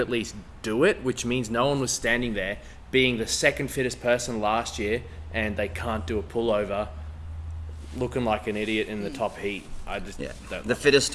least do it, which means no one was standing there being the second fittest person last year and they can't do a pullover looking like an idiot in the top heat. I just don't. The fittest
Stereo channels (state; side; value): identical; both; correlation 1.00